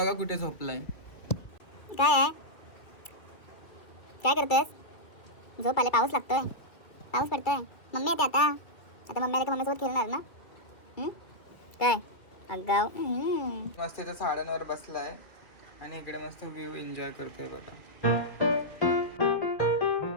कुठे झोपलाय. काय आहे? काय करतेस? झोप आले, पाऊस लागतोय, पाऊस पडतोय. मम्मी येते आता. आता मम्मी आले की मम्मीसोबत खेळणार ना? काय अगाव. मस्त इथं झाडांवर बसलाय आणि इकडे मस्त व्ह्यू एन्जॉय करतोय बघा.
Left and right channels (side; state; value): right; late; 2.4 ms